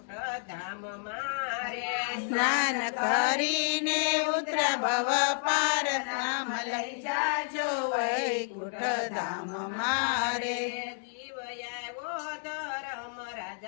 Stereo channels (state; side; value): silent; right; digital silence